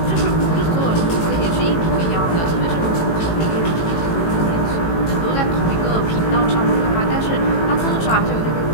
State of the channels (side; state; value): right; late; 18 ms